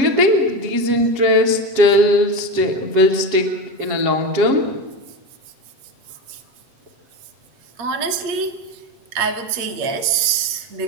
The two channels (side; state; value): left; late; 8.5 ms